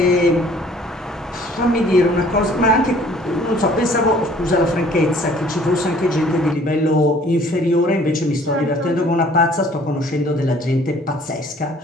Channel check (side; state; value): both; normal; correlation 0.55